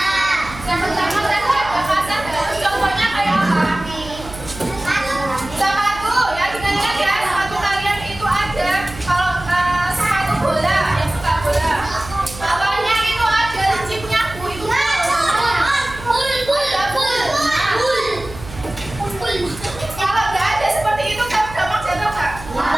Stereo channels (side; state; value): right; noise; hum, 14 dB below the sound